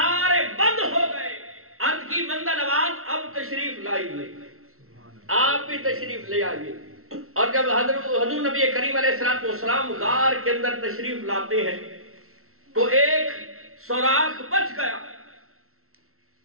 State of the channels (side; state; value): left; late; 0.62 ms